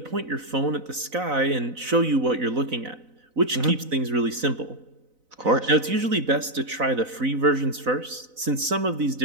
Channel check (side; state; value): left; late; 4.0 ms